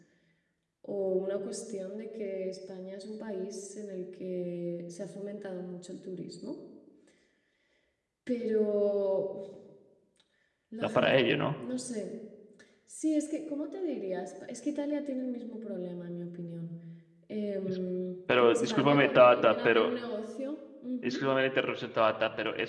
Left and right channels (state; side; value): identical; both; correlation 1.00